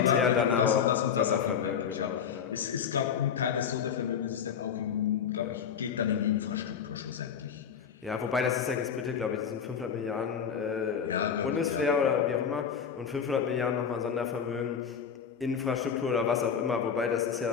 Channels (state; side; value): quieter; right; 7.3 dB